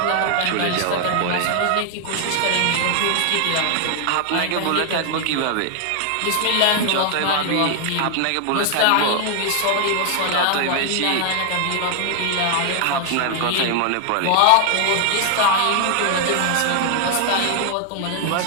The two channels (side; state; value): both; different; correlation 0.00